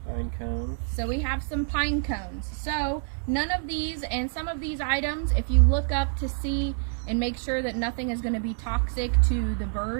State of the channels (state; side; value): silent; left; 60 dB below the other